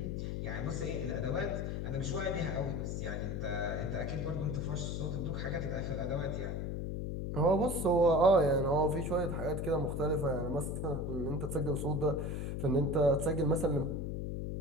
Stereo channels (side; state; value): left; noise; hum, 3 dB below the sound